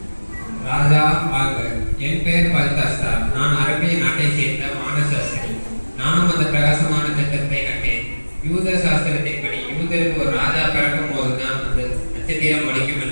ராஜா வாழ்க. என் பெயர் பல்தாஸ்தார். நான் அரபிய நாட்டை சேர்ந்த வானசாஸ்திரி. நானும் அந்த பிரகாசமான நட்சத்திரத்தை கண்டேன். யூத சாஸ்திரத்தின்படி யூதருக்கு ஒரு ராஜா பிறக்கும் போதுதான் அந்த நட்சத்திரம் ஒழிக்கும்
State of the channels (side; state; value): both; inverted; correlation -1.00